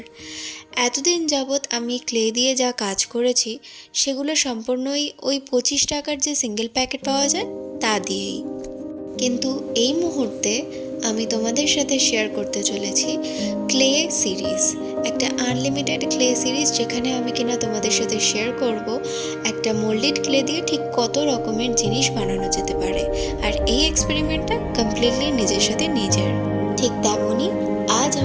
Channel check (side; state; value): both; identical; correlation 1.00